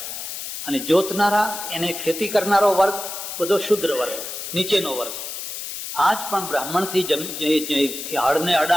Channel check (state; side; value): noise; left; hiss, 7 dB below the sound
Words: અને જોતનારા, એને ખેતી કરનારો વર્ગ બધો શુદ્ર વર્ગ, નીચેનો વર્ગ. આજ પણ બ્રાહ્મણથી હળને